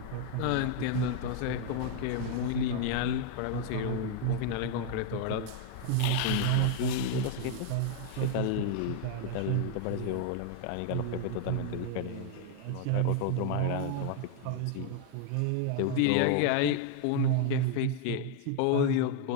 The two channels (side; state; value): both; different; correlation 0.00